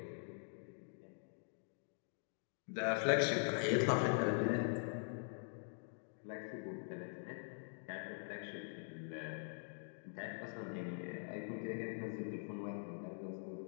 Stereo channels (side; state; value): right; silent; digital silence